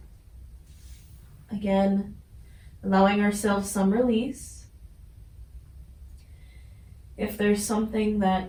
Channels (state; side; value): identical; both; correlation 1.00